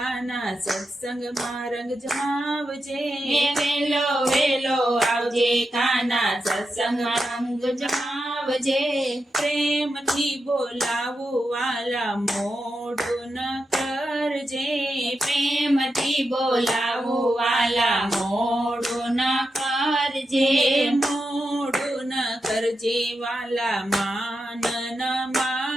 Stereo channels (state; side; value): normal; both; correlation 0.88